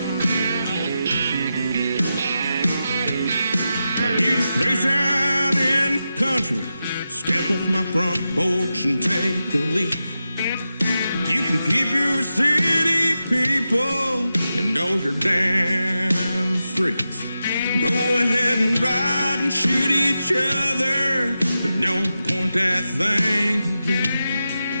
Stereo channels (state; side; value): inverted; both; correlation -0.90